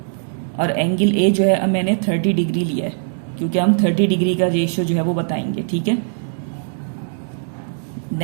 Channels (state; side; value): silent; left; digital silence